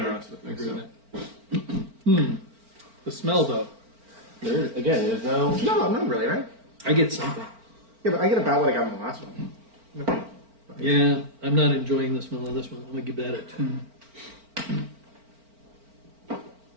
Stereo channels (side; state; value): left; late; 4.4 ms